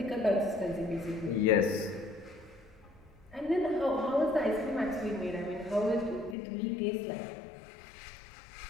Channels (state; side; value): drops out; right; at 6.4 s